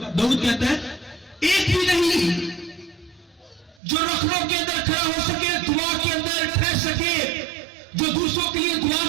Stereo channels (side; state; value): left; drops out; at 3.8 s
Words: कहता है एक भी नहीं जो रखड़ों के अंदर खड़ा हो सके, दुआ के अंदर ठहर सके, जो दूसरों के लिए दुआ